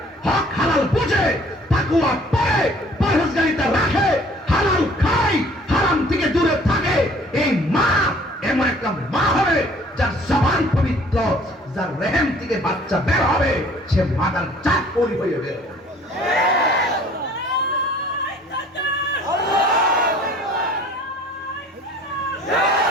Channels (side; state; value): both; normal; correlation 0.54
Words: হক হালাল বুঝে, তাকওয়া পড়ে, পরহেজগারিতা রাখে, হালাল খায়, হারাম থেকে দূরে থাকে। এই মা এমন একটা মা হবে যার জবান পবিত্র, যার রেহেম থেকে বাচ্চা বের হবে, সে মাদার জাত পরি হয়ে বের হবে।